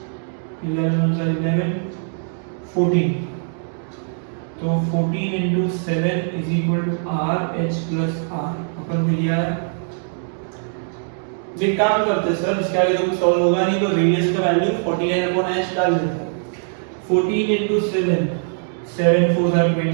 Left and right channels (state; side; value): silent; left; digital silence